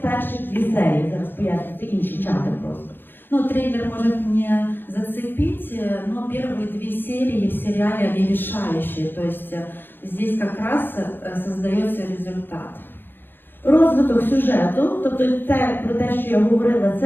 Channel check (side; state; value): right; late; 0.099 ms